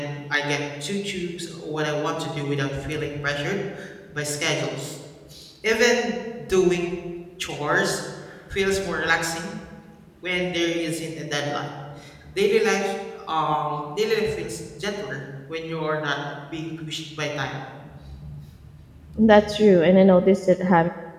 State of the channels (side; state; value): both; identical; correlation 1.00